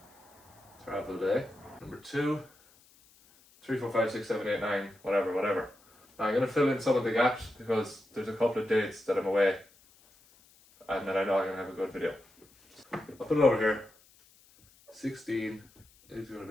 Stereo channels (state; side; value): noise; left; hiss, 29 dB below the sound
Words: travel day. Number 2, 3, 4, 5, 6, 7, 8, 9, whatever. Now I'm going to fill in some of the gaps because there's a couple of dates that I'm away. And then I know I'm going to have a good video. I'll put it over here. 16 is going